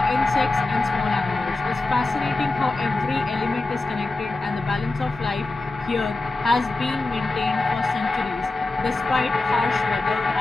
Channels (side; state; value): right; quieter; 3.2 dB